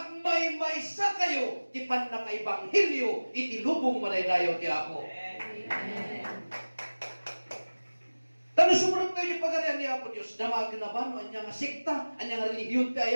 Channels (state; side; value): inverted; both; correlation -1.00